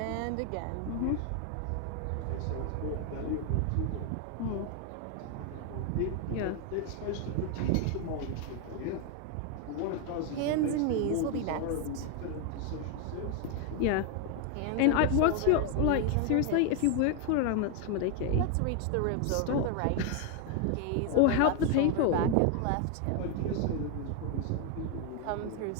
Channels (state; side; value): different; both; correlation 0.01